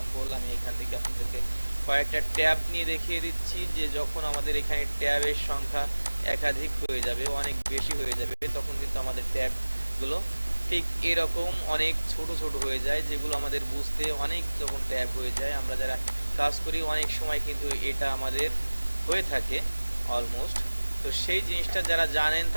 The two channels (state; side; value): inverted; both; correlation -1.00